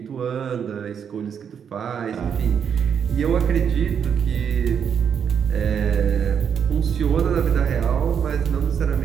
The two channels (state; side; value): quieter; left; 7.6 dB